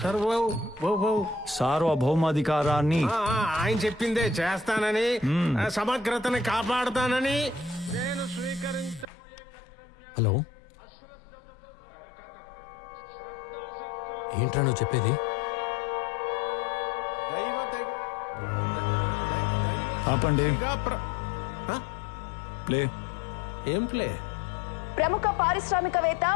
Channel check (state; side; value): drops out; right; at 9.1 s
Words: సార్వభౌమాధికారాన్ని ఆయన చెప్పిందే చేస్తానని, సమగ్రతని కాపాడుతానని, నేను స్వీకరించబోయే కర్తవ్యాన్ని అశ్రద్ధతో శ్రద్ధాశక్తుల ఏంట్రా నువ్వు చెప్పేది? ఆపండి. ప్లే. ఏం ప్లే? ప్రముఖ పారిశ్రామికవేత్త